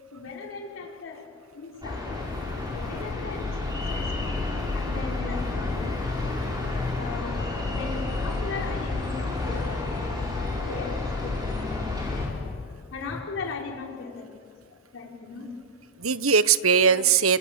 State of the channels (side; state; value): both; normal; correlation 0.18